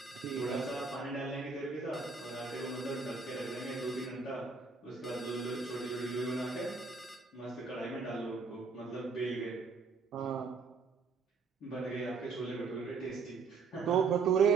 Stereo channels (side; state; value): left; quieter; 4.7 dB